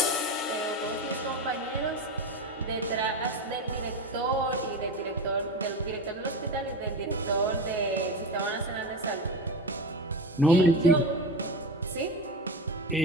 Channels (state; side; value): normal; both; correlation 0.23